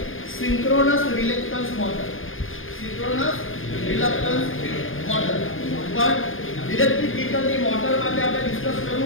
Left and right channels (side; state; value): right; late; 0.59 ms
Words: synchronous reluctance motor. Synchronous reluctance motor. પણ ઇલેક્ટ્રિક વ્હીકલની મોટર માટે આપણે ડિસ્કસ